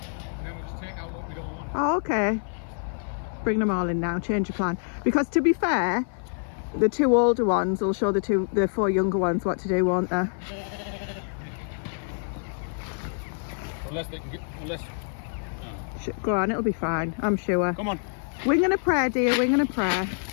then we'll just take out what we don't want. Oh, okay. Bring them all in now, change your plan. Because to be fair, the 2 older ones will show the 4 younger ones what to do, won't they? Unless they can get... Go on, it'll be fine, I'm sure. Come on. Wing and a prayer, dear, wing and a prayer.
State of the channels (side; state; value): right; silent; 55 dB below the other